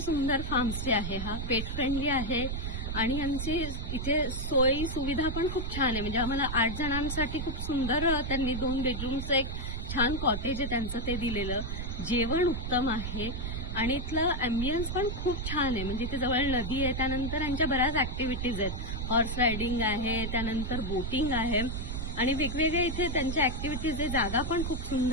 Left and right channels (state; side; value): noise; right; rumble, 4 dB below the sound